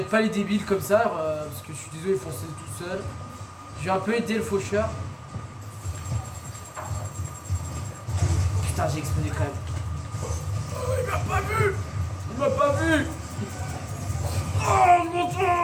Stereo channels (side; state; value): both; identical; correlation 1.00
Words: pas les débiles comme ça, parce que je suis désolé, ils font ça tout seul. Je vais un peu aider le faucheur. Putain, j'ai explosé quand même. Oh, il m'a pas vu. Il m'a pas vu. Oh, mon Dieu.